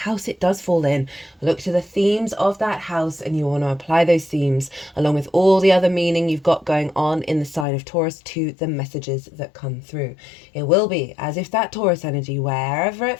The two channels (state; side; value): drops out; right; at 7.7 s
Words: it does fall in. Look to the themes of that house, and you want to apply those themes along with all the other meaning you've got going on in the sign of Taurus to the messages that come through. It will be as if that Taurus energy, wherever it